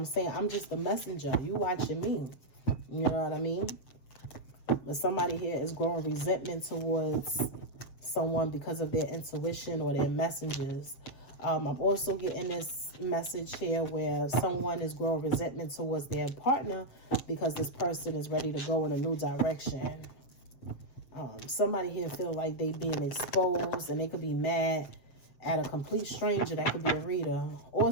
saying? I'm just the messenger. You watching me. You know what I mean? But somebody here is growing resentment towards someone because of their intuition or their messages. I'm also getting this message here where someone is growing resentment towards their partner because this person is ready to go in a new direction. Somebody here feel like they being exposed, and they could be mad at a complete stranger. That could be a reader, or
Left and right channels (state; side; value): late; right; 7.4 ms